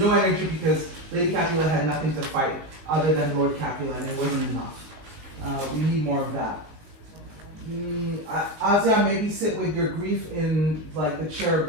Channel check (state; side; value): late; left; 19 ms